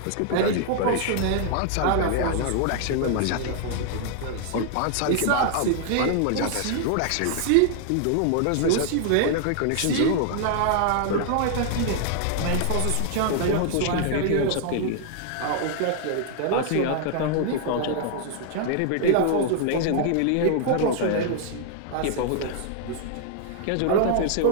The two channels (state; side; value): different; both; correlation 0.00